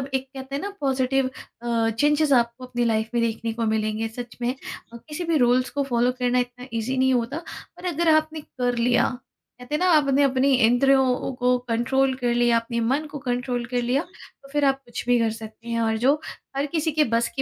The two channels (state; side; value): identical; both; correlation 1.00